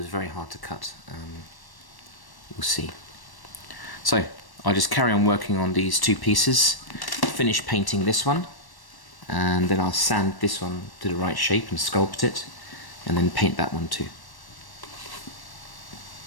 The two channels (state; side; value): late; right; 1.1 ms